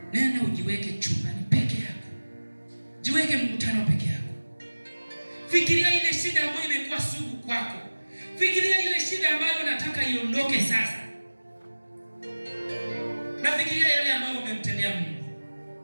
Nenda ujiweke chumbani peke yako, jiweke mkutano peke yako. Fikiria ile shida ambayo imekuwa sugu kwako. Fikiria ile shida ambayo unataka iondoke sasa. Na fikiria yale ambayo umemtendea Mungu.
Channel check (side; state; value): both; inverted; correlation -1.00